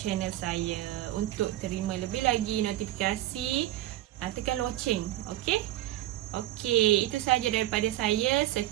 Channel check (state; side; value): quieter; left; 14.7 dB